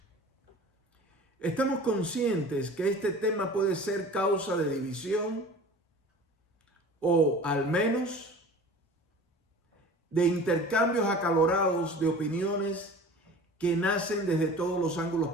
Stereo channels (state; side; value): normal; both; correlation 0.41